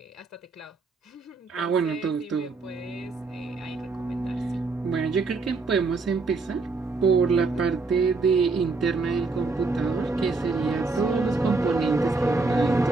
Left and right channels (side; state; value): left; quieter; 3.9 dB